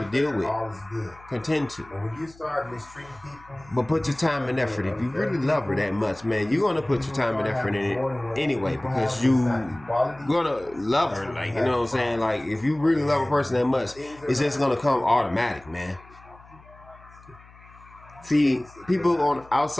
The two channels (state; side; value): noise; left; hum, 24 dB below the sound